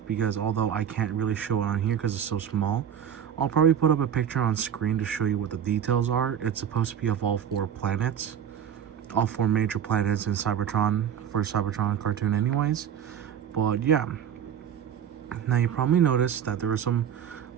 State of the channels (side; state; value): left; quieter; 8.8 dB